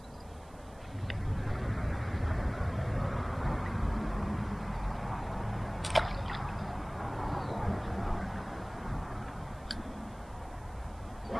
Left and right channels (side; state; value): right; noise; hiss, 26 dB below the sound